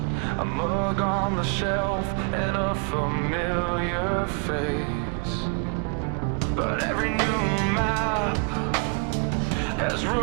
a mug on the shelf and a familiar face. But every new map has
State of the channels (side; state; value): left; quieter; 37.3 dB